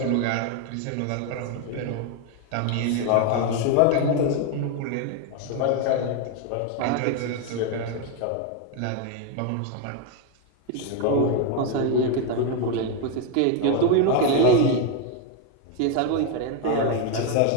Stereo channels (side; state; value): both; different; correlation 0.01